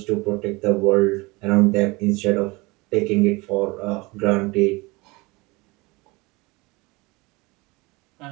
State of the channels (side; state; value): left; quieter; 24.3 dB